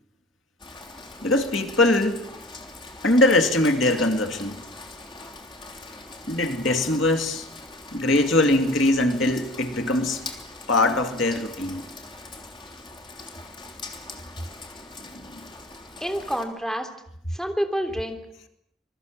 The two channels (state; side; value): normal; both; correlation 0.44